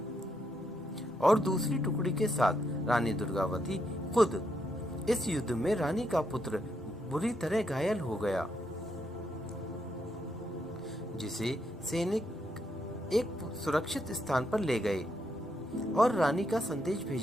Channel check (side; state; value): both; normal; correlation 0.78